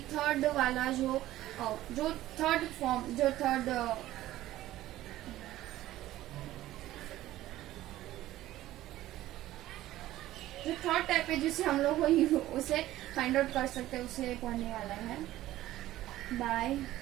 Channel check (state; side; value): quieter; left; 15.0 dB